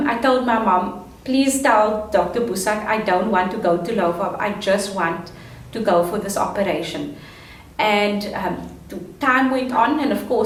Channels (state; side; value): identical; both; correlation 1.00